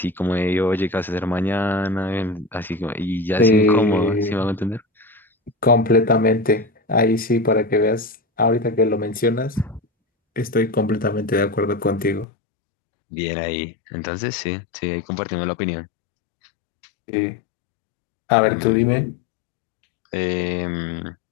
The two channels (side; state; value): right; drops out; at 12.2 s